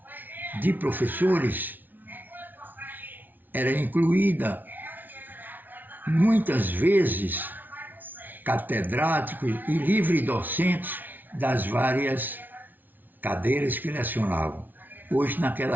de professores era incluída muitas vezes catedráticos e livre-docentes das várias cadeiras que lecionavam. Pois,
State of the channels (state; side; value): late; left; 0.085 ms